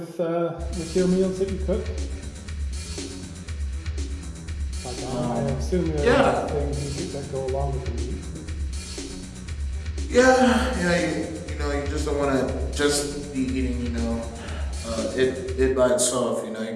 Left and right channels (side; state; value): both; identical; correlation 1.00